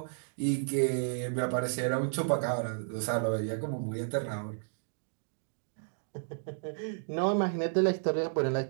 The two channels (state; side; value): silent; left; digital silence